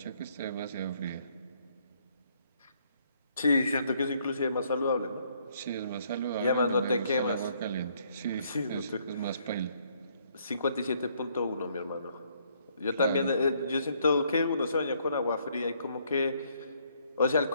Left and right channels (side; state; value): both; inverted; correlation -0.68